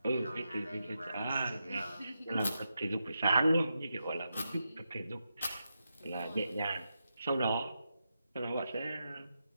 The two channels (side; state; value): both; inverted; correlation -0.86